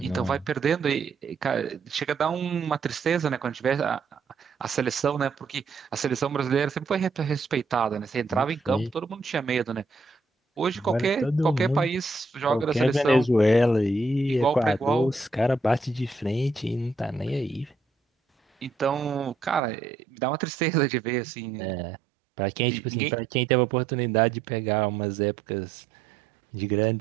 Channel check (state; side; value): drops out; left; at 19.6 s